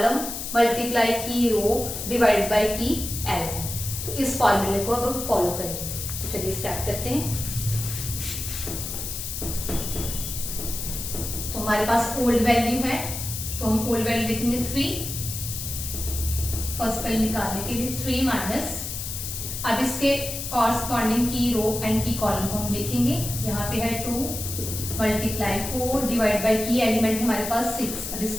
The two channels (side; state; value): left; noise; hiss, 6 dB below the sound